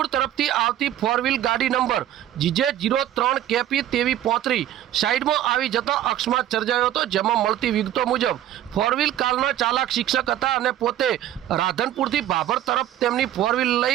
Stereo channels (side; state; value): left; quieter; 12.3 dB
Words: તરફથી આવતી ફોર વ્હીલ ગાડી નંબર GJ03KP 2335 સાઈડમાં આવી જતા અકસ્માત સર્જાયો હતો, જેમાં મળતી વિગતો મુજબ ફોર વ્હીલ કારના ચાલક શિક્ષક હતા અને પોતે રાધનપુરથી ભાભર તરફ તેમની ફોર વ્હીલ